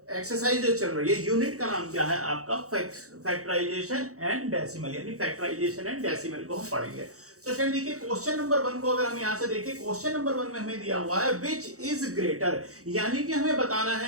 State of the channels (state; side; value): late; left; 0.65 ms